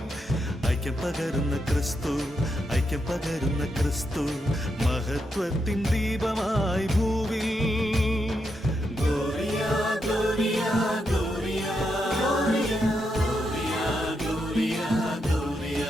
ഐക്യം പകരുന്ന ക്രിസ്തു ഐക്യം പകരുന്ന ക്രിസ്തു മഹത്വത്തിൻ ദീപമായി ഭൂവിൽ Gloria gloria gloria gloria gloria gloria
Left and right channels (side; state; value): both; normal; correlation 0.83